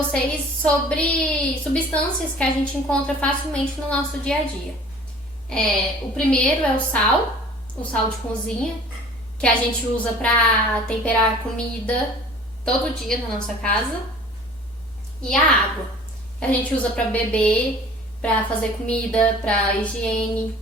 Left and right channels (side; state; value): both; normal; correlation 0.47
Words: sobre substâncias que a gente encontra facilmente no nosso dia a dia. O primeiro é o sal de cozinha, que a gente usa para temperar comida todo dia na nossa casa. E a água, que a gente usa para beber, para fazer comida, para higiene.